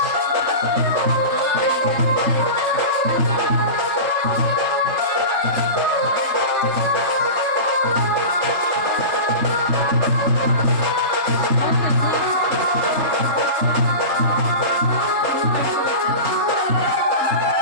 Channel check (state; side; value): late; left; 3.3 ms